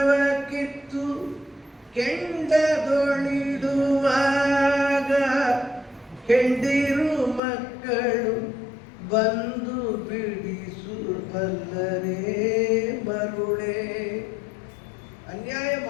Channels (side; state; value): right; drops out; at 7.4 s